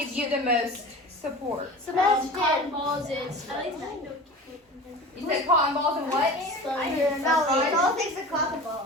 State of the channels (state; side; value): normal; both; correlation 0.35